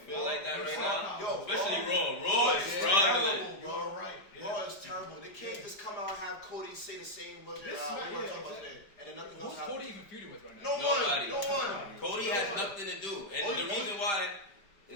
like that right now? Yo, especially Raw. Raw is struggling. Bro. Raw is terrible. They can't just come out and have Cody say the same words we were talking about today, and then nothing else Who's happens. Cody even feuding with right now? Nobody. No one. Cody has nothing to do, and the reason why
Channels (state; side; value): late; right; 5.0 ms